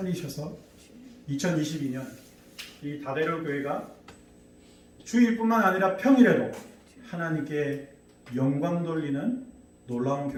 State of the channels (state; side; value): identical; both; correlation 1.00